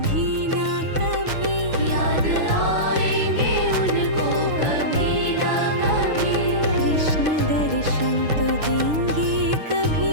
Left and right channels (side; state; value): left; late; 6.5 ms